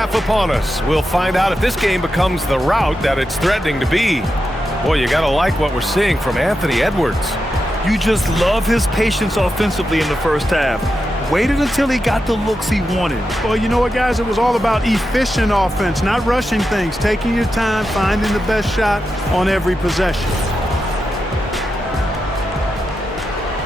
upon us, we'll find out if this game becomes the rout that it's threatening to be. Boy, you gotta like what we're seeing from Anthony Edwards. You just love his patience offensively in the first half. Waited until he got the looks he wanted. Well, you know what, guys? It was all about efficient offense, not rushing things, taking your time, finding the best shot on every possession.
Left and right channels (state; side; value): normal; both; correlation 0.88